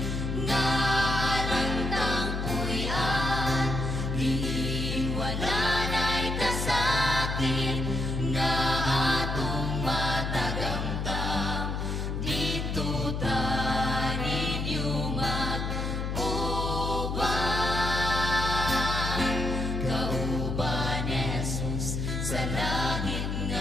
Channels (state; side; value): noise; left; hum, 2 dB below the sound